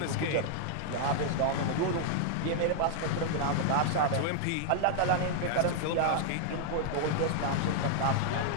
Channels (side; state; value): both; different; correlation 0.00